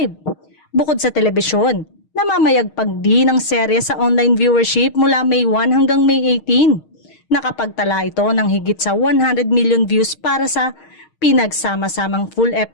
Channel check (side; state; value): right; late; 6.4 ms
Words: Bukod sa telebisyon, namamayagpag din ang serye sa online viewership mula May 1 hanggang May 18. Nakapagtala ito ng higit sa 100 million views para sa pinagsama-samang full